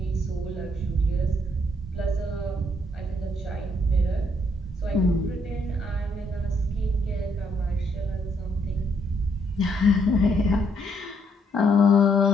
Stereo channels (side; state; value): both; normal; correlation 0.71